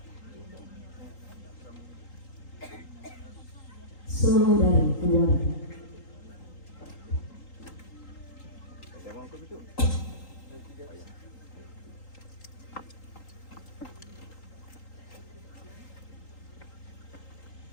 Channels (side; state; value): right; late; 3.8 ms